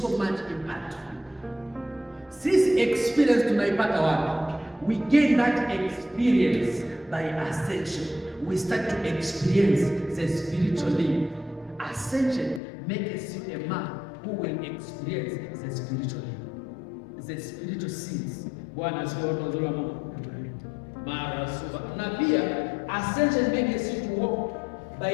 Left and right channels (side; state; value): right; drops out; at 12.6 s